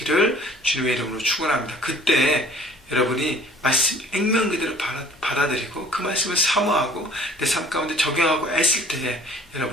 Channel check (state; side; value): normal; both; correlation 0.52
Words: 주님의 이름으로 축원합니다. 그때 여러분이 말씀 액면 그대로 받아들이고 그 말씀을 사모하고 내 삶 가운데 적용하고 애쓸 때에